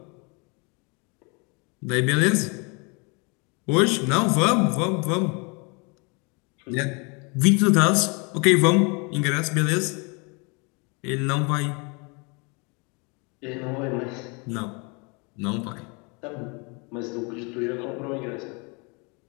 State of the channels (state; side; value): quieter; right; 31.6 dB